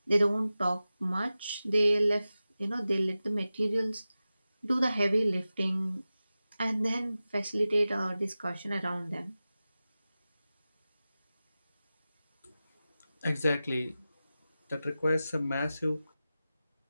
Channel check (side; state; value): both; inverted; correlation -0.95